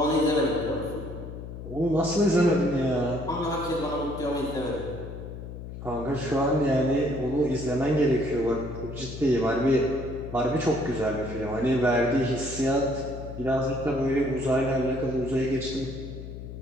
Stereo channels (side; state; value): left; noise; hum, 10 dB below the sound